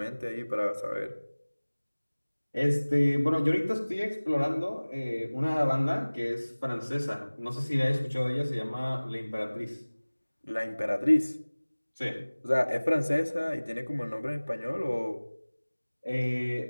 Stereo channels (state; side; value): inverted; both; correlation -1.00